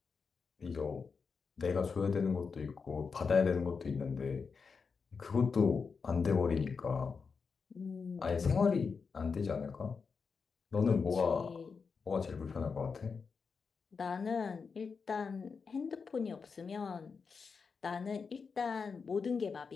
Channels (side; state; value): right; quieter; 5.3 dB